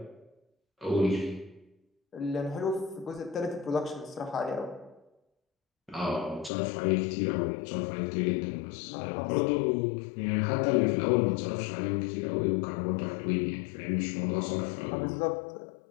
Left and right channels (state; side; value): drops out; right; at 6.5 s